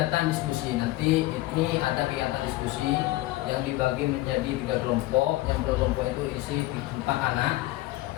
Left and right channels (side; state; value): right; quieter; 18.2 dB